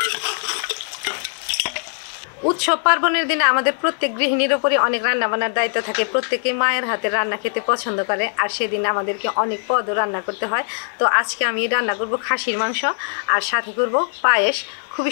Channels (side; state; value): right; silent; digital silence